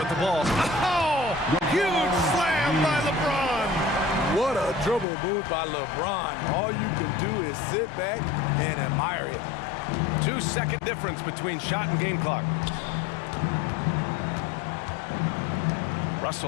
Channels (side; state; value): right; drops out; at 5.1 s